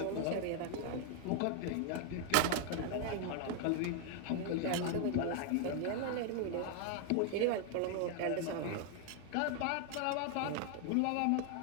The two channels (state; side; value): different; both; correlation 0.00